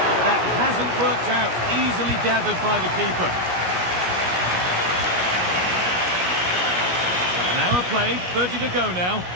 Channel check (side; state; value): left; late; 17 ms